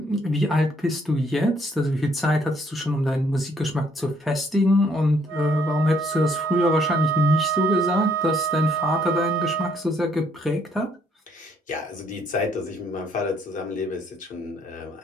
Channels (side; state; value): both; normal; correlation 0.67